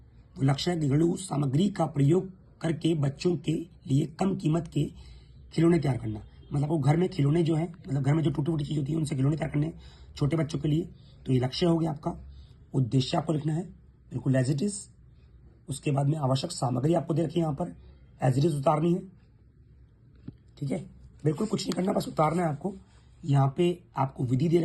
वो लक्ष्य है घरेलू सामग्री का प्रयोग करके बच्चों के लिए कम कीमत के खिलौने तैयार करना। मतलब वो घर में खिलौने जो है, मतलब घर में जो टूटी फूटी चीज होती है उनसे खिलौने तैयार करने छोटे बच्चों के लिए। तो ये लक्ष्य हो गया आपका। उद्देश्य आपको लिखना है, बिल्कुल एज इट इज। उसके बाद में आवश्यक सामग्री आपको दे रखी है यहाँ पर, एज इट इज उतारनी है, ठीक है। बिल्कुल कुछ नहीं करना, बस उतारना है आपको। यहाँ पे आपको विधि दे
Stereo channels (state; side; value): identical; both; correlation 1.00